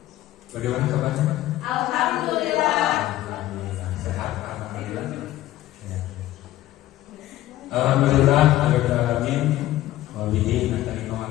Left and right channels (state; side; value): quieter; right; 14.9 dB